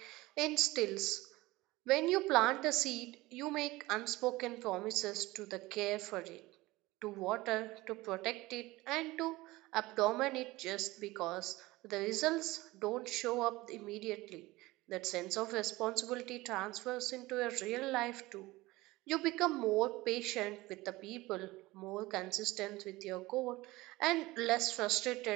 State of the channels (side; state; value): left; quieter; 19.8 dB